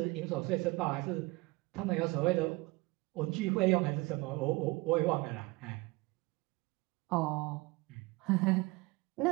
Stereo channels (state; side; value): quieter; left; 23.3 dB